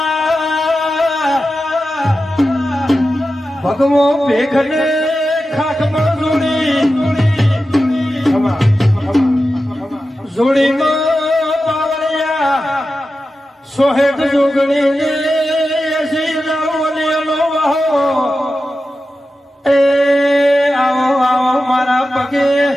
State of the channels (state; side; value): normal; both; correlation 0.92